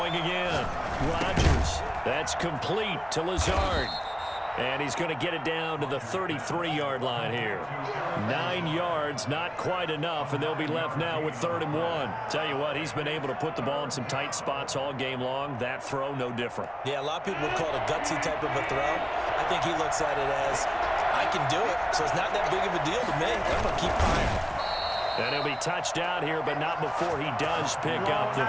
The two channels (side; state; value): both; identical; correlation 1.00